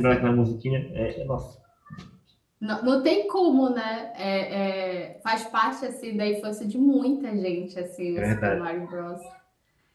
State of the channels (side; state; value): both; identical; correlation 1.00